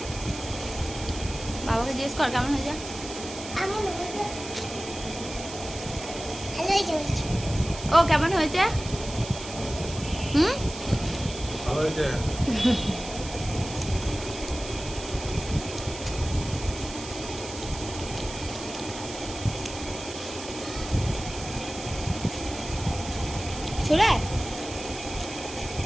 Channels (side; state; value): right; noise; hiss, 11 dB below the sound